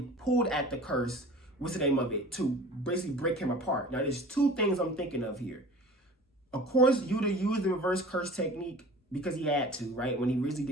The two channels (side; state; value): both; normal; correlation 0.42